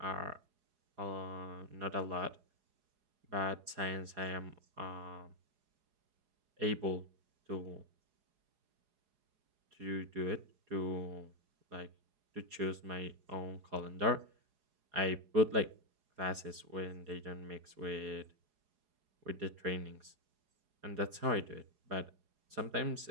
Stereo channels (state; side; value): late; left; 4.8 ms